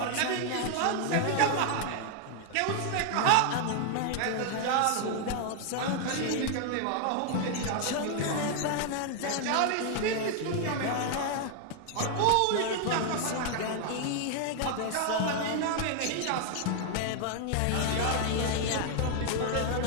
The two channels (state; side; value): different; both; correlation 0.00